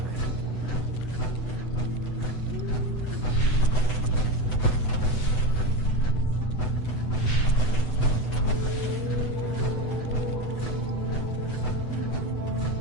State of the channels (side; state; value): right; late; 8.0 ms